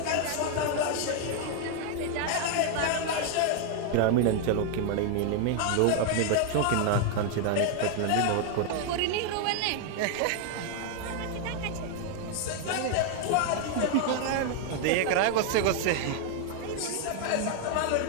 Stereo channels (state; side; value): different; both; correlation 0.00